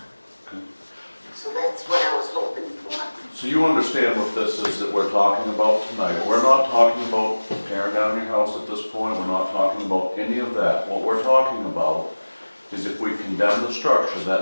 Okay. So that's what I was hoping for. So you understand what this is that we're talking about tonight. We're not talking about tearing down your house at this point, we're not talking about any of that. What we're talking about is if we condemn the structure,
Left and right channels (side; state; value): both; inverted; correlation -1.00